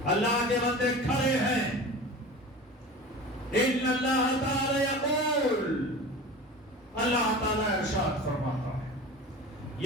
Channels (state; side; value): normal; both; correlation 0.35